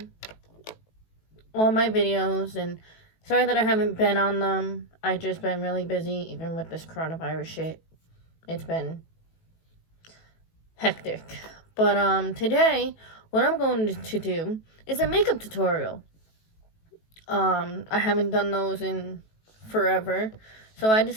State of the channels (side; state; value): right; late; 18 ms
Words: my videos, and sorry that I haven't been on them. I just been really busy, even with this coronavirus shit. It's been hectic. But, today, what I'm going to do is a makeup tutorial. I haven't done those in forever, so I